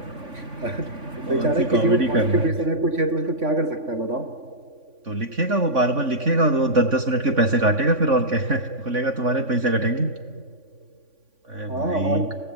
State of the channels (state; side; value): late; left; 3.5 ms